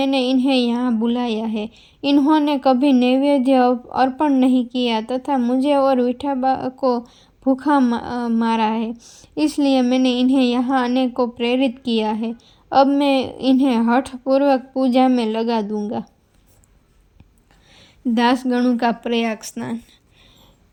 इन्हें यहाँ बुलाया है। इन्होंने कभी नैवेद्य अर्पण नहीं किया तथा मुझे और विठोबा को भूखा मारा है, इसलिए मैंने इन्हें यहाँ आने को प्रेरित किया है। अब मैं इन्हें हठपूर्वक पूजा में लगा दूंगा। दासगणों का प्रयाग स्नान।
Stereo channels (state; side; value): identical; both; correlation 1.00